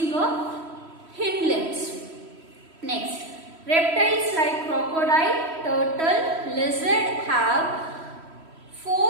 a hind limbs. Next, Reptiles like crocodile, turtle, lizard have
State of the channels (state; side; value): late; left; 3.1 ms